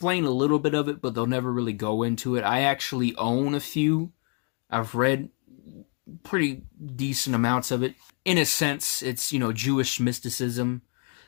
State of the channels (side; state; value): right; quieter; 38.4 dB